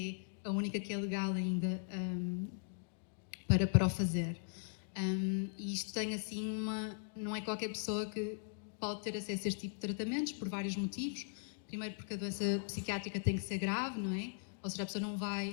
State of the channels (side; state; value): right; silent; digital silence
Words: é a única que é legal ainda para o fazer. E isto tem assim não é qualquer pessoa que pode ter acesso a este tipo de tratamentos, por vários motivos. Primeiro porque a doença psiquiátrica tem que ser grave, não é? Ou seja, a pessoa não